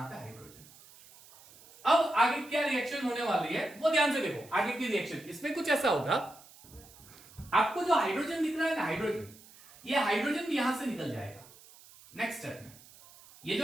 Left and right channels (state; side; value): noise; right; hiss, 22 dB below the sound